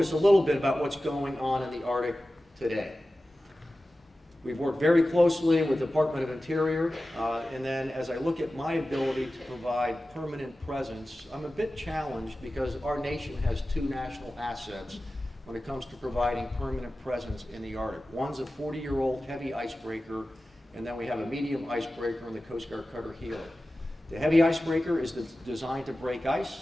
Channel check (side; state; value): both; normal; correlation 0.95